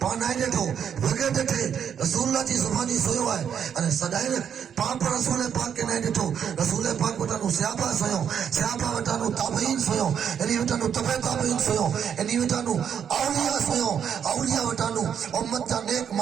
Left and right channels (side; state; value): left; quieter; 8.2 dB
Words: पान आए ॾिठो वगे ॾिठे रसूलुल्लाह जी ज़ुबानी सोयो है अने सदाई पाप रसूल पाक के न ॾिठो रसूल पाक वटानो सहाबा सोयो सहाबा वटानो ताबईन सोयो इनी वटानो तबे ताबईन सोयो इनी वटानो औलिया सोयो औलिया वटानो उम्मत जा नेक